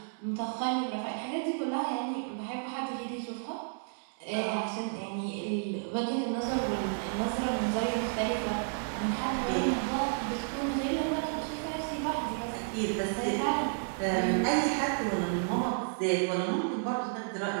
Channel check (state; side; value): silent; left; digital silence